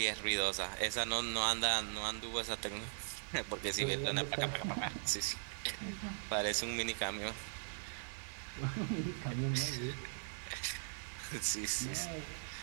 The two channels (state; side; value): silent; left; digital silence